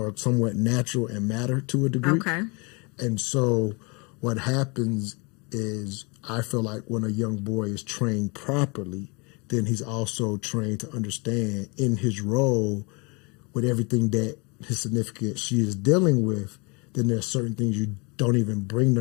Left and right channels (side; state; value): right; quieter; 30.1 dB